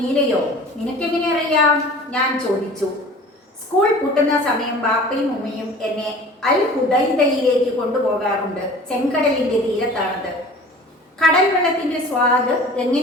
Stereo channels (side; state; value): both; normal; correlation 0.43